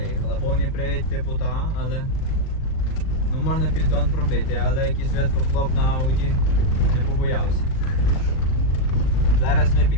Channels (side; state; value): right; late; 38 ms